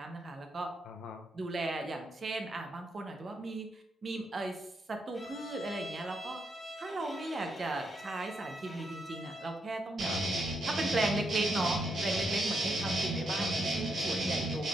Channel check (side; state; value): both; normal; correlation 0.80